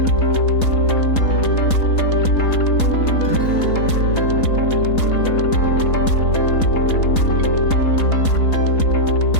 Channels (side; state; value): right; late; 3.9 ms